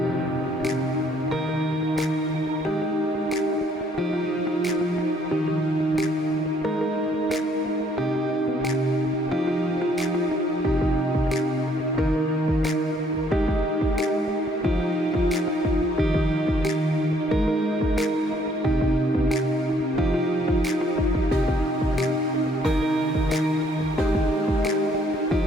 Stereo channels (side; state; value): both; normal; correlation 0.65